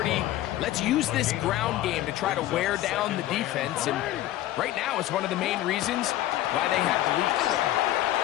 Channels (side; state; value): right; quieter; 14.3 dB